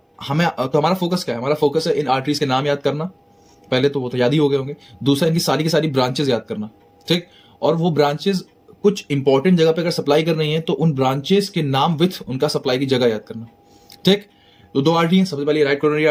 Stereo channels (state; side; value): identical; both; correlation 1.00